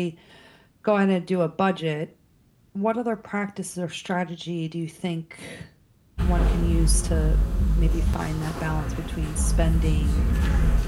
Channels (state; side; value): identical; both; correlation 1.00